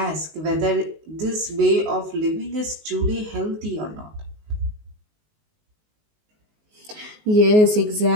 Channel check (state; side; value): late; left; 19 ms